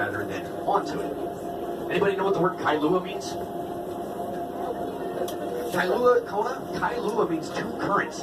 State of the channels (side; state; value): both; identical; correlation 1.00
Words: than onto it. Anybody know what the word Kailua means? Kailua means two currents.